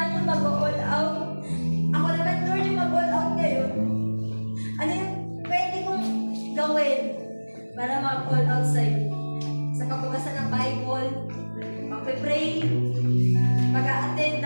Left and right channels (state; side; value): inverted; both; correlation -1.00